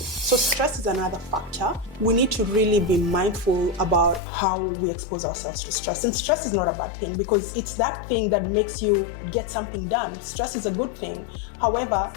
So stress is another factor. We need to really be mindful about how we expose ourselves to stress. And stress is not a bad thing, because it's that thing that makes you get something done. Stress is a good thing. However,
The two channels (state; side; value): drops out; right; at 4.2 s